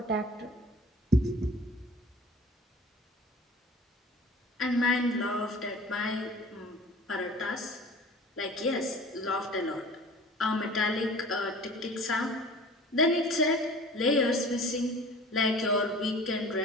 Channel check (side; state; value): both; normal; correlation 0.44